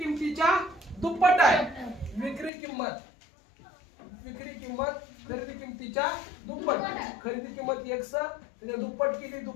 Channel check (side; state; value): right; drops out; at 2.5 s